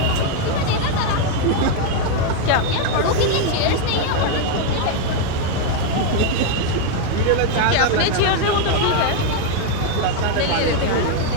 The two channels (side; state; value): both; different; correlation 0.01